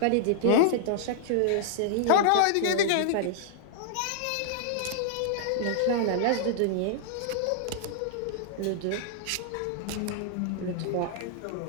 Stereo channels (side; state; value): both; different; correlation -0.01